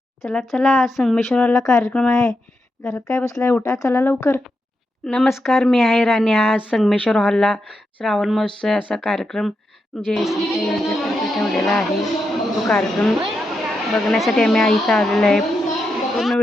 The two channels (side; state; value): both; normal; correlation 0.85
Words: चला चला, संगमेश्वरला कार्यक्रम आहे. घरात काय बसलाय, उठा चला लवकर. नमस्कार, मी आहे राणी. आज संगमेश्वर हॉलला श्रावण महोत्सव असा कार्यक्रम JSC यांच्यातर्फे ठेवलेला आहे. तो कार्यक्रम बघण्यासाठी आम्ही इथं आलेलो आहे. पूर्ण